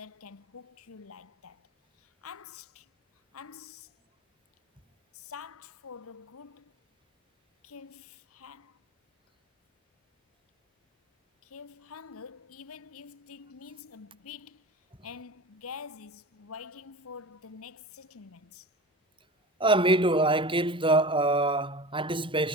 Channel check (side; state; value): both; normal; correlation 0.33